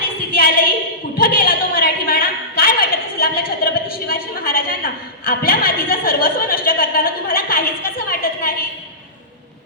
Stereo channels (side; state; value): both; normal; correlation -0.18